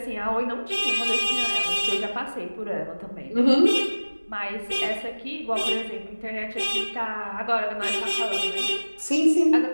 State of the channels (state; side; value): inverted; both; correlation -1.00